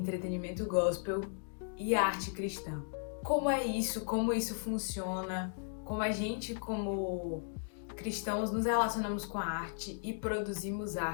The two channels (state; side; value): silent; right; digital silence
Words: gospel e a arte cristã. Como é isso, como isso funciona, como a gente, como cristãos, nos relacionamos com a arte e produzimos